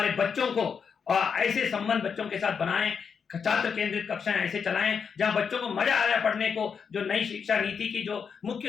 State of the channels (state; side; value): quieter; right; 6.4 dB